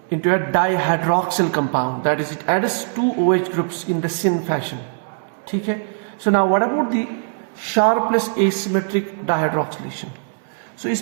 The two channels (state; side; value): silent; left; digital silence